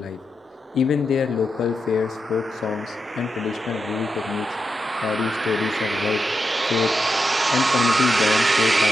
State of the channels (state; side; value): normal; both; correlation 0.86